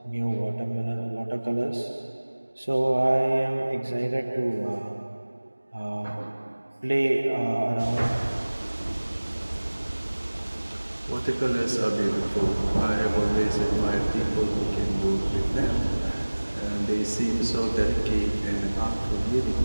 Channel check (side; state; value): both; inverted; correlation -1.00